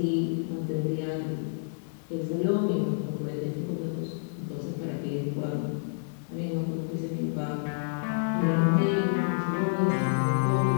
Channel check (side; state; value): right; silent; digital silence